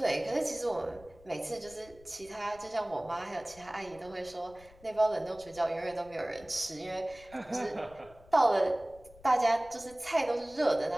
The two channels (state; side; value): noise; left; rumble, 23 dB below the sound